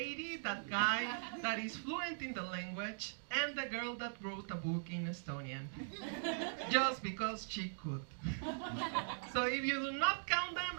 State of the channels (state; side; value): silent; left; digital silence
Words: that guy that is fluent in the language, and the girl that wrote a book in Estonian. Just because she could. So if you do not count